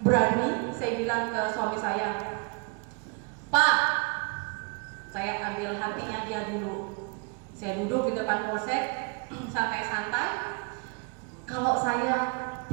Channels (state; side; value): quieter; left; 33.5 dB